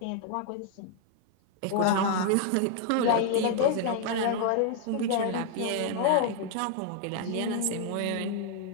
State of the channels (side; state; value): both; different; correlation 0.00